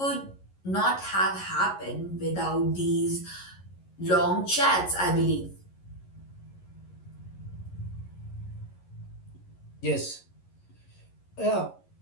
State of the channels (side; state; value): right; late; 11 ms